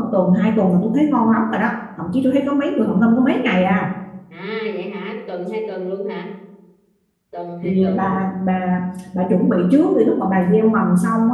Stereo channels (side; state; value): both; identical; correlation 1.00